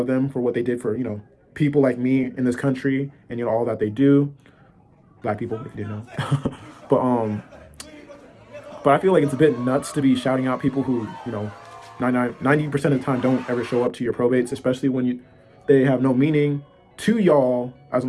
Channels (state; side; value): identical; both; correlation 1.00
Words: them for what they did for, people like me in this country and, all that they do. Black people, if you didn't know. but I feel like it's a bit nuts to be shouting out people who, 90% of the time don't ever show up to your probates, especially when they have no meaning to y'all as an